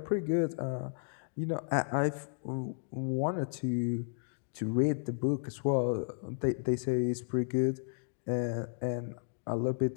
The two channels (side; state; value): right; silent; digital silence